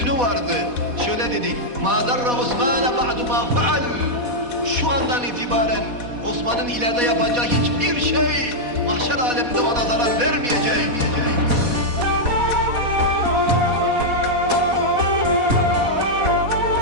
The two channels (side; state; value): left; late; 4.1 ms